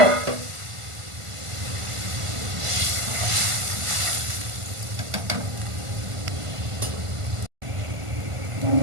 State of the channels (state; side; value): late; left; 1.5 ms